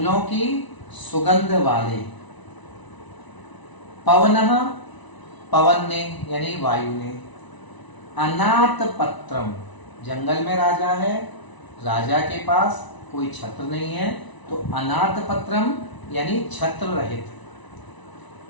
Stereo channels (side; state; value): right; late; 1.0 ms